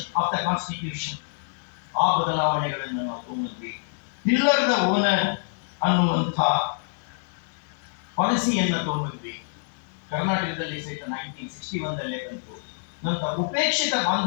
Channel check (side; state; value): right; silent; digital silence